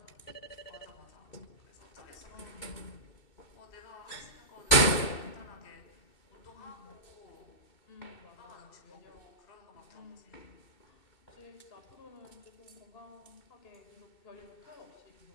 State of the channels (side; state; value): right; late; 2.7 ms